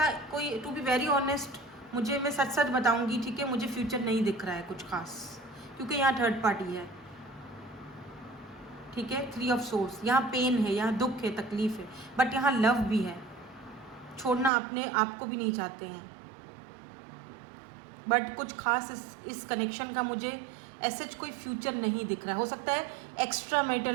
कोई, टू बी वेरी ऑनेस्ट, मैं सच सच बताऊंगी, ठीक है, मुझे फ्यूचर नहीं दिख रहा है कुछ खास, क्योंकि यहाँ थर्ड पार्टी है, ठीक है। 3 ऑफ सोर्स, यहाँ पेन है, यहाँ दुख है, तकलीफ है, बट यहाँ लव भी है। छोड़ना अपने आप को भी नहीं चाहते हैं, बट कुछ खास इस कनेक्शन का मुझे ऐसे कोई फ्यूचर नहीं दिख रहा है। हो सकता है एक्स्ट्रा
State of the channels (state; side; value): drops out; left; at 14.5 s